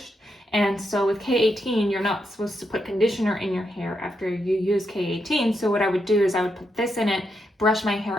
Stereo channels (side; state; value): both; normal; correlation 0.82